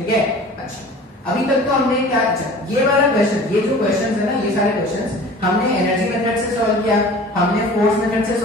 है? अच्छा, अभी तक तो हमने क्या, अच्छा ये वाला क्वेश्चन, ये जो क्वेश्चंस है ना, ये सारे क्वेश्चंस हमने एनर्जी मेथड से सॉल्व किया, हमने फोर्स मेथड से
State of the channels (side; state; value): both; normal; correlation 0.43